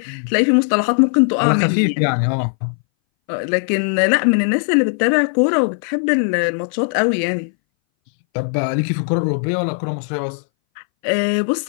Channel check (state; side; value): silent; right; 62 dB below the other